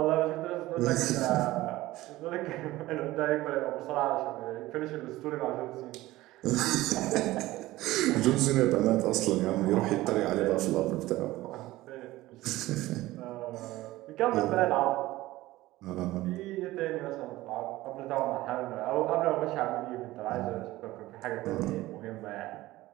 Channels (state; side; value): quieter; left; 17.5 dB